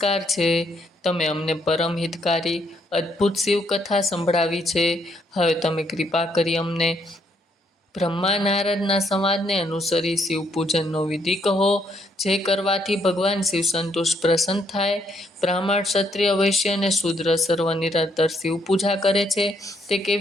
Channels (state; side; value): normal; both; correlation 0.72